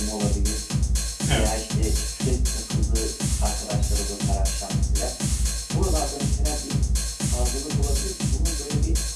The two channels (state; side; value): identical; both; correlation 1.00